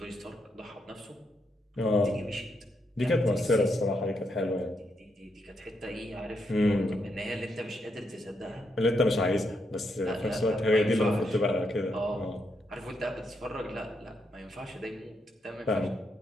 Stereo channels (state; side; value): normal; both; correlation 0.79